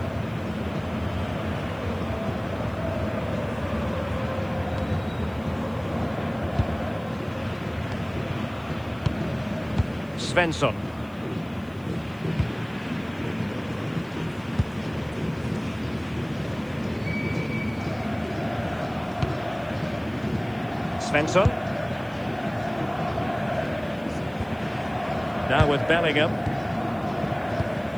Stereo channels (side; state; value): left; noise; hiss, 28 dB below the sound